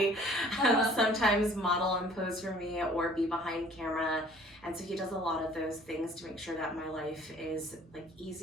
sometimes model and pose for me or be behind camera. And so he does a lot of those things to make sure that my life is like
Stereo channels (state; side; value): normal; both; correlation 0.53